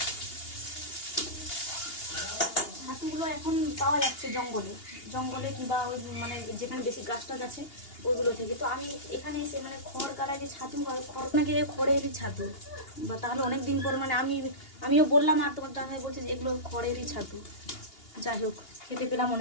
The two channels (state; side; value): late; right; 2.8 ms